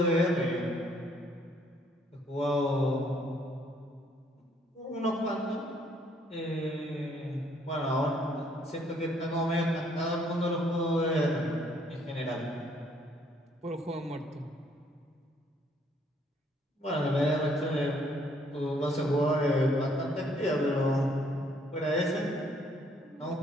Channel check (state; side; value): normal; both; correlation 0.66